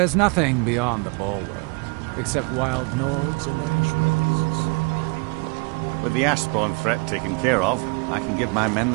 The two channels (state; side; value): quieter; left; 31.5 dB